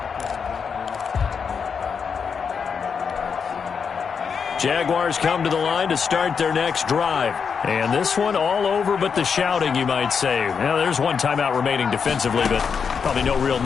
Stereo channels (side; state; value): right; quieter; 6.2 dB